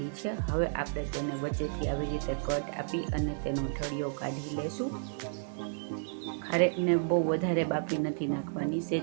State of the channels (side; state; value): left; silent; digital silence